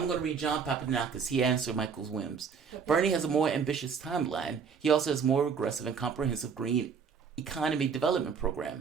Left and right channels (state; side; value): quieter; left; 6.2 dB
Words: going to read John Papadakis. He answered Michael's whims. Bernie has a more ambitious timeline. He also has a more aggressive and comprehensive green economy development